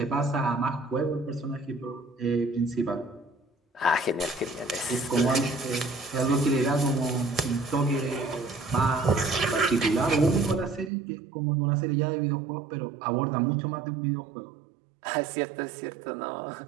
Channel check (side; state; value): left; drops out; at 10.9 s